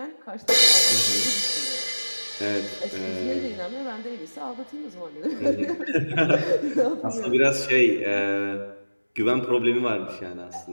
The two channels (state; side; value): inverted; both; correlation -1.00